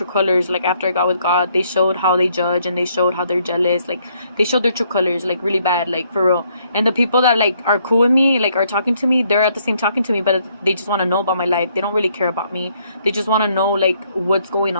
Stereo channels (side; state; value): both; inverted; correlation -0.70